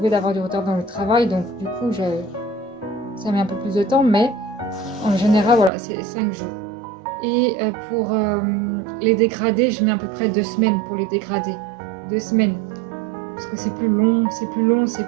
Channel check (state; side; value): drops out; left; at 5.7 s